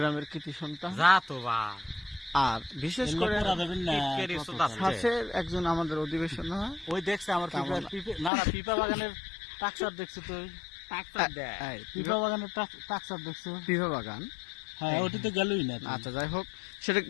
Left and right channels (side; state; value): right; drops out; at 8.3 s